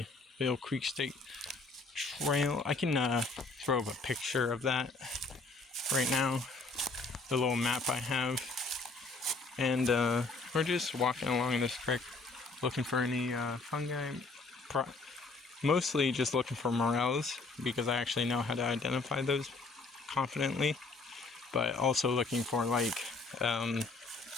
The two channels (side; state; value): right; quieter; 3.7 dB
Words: Vail Creek State Trail. I can throw up a picture of that right now. The little map I have. And we're just walking along this creek looking for any fungi. Mostly just looking for morels because I actually know how to identify those confidently. But also looking for like